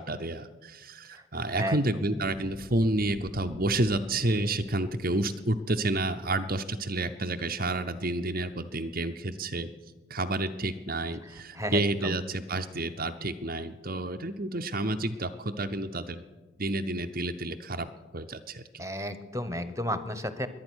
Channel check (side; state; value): both; normal; correlation 0.53